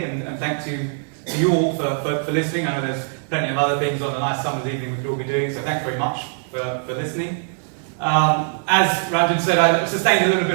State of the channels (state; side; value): silent; left; digital silence